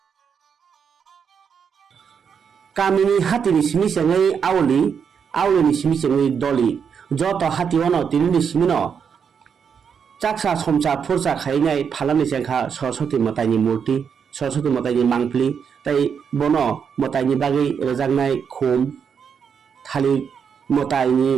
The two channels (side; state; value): left; quieter; 6.9 dB